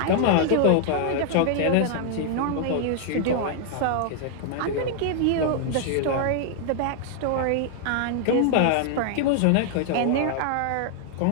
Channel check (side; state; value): both; different; correlation 0.00